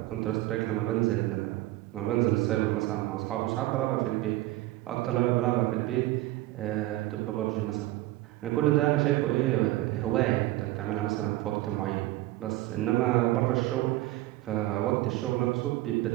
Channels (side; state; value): left; quieter; 17.2 dB